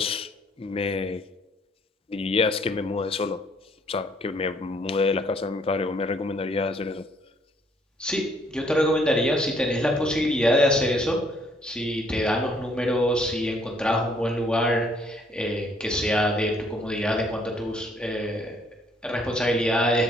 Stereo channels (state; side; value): normal; both; correlation 0.65